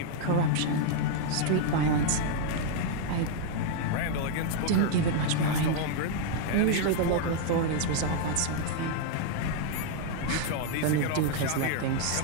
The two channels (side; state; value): both; different; correlation 0.00